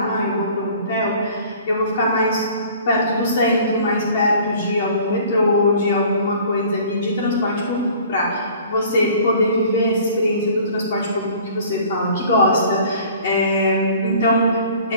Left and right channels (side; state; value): both; inverted; correlation -0.49